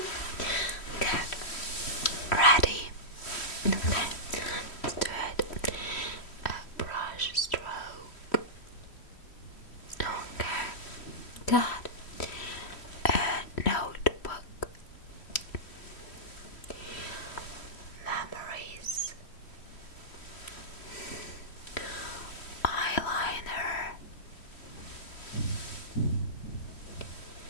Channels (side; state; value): right; late; 3.1 ms